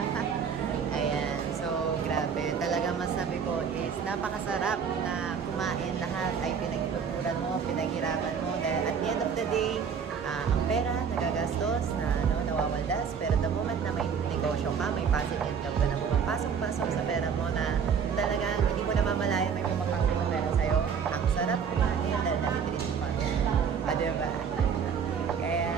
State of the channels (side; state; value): left; quieter; 6.7 dB